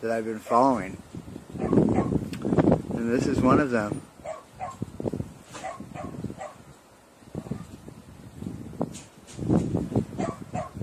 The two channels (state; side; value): identical; both; correlation 1.00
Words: that I've been following. And this is one of them.